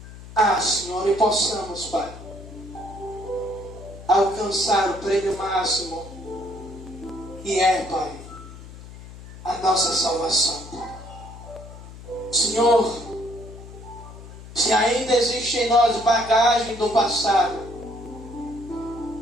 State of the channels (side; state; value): left; noise; hum, 15 dB below the sound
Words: Senhor, e possamos, Pai, alcançar o prêmio máximo, que é, Pai, a nossa salvação, Pai. Senhor, se ainda existe em nós bagagem do passado,